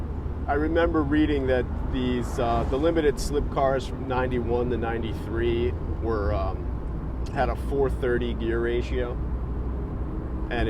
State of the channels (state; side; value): identical; both; correlation 1.00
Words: I remember reading that these the limited slip cars from 91 to 93 were had a 430 gear ratio, and